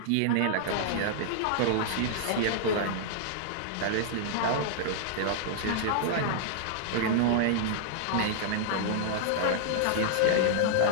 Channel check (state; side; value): different; both; correlation -0.01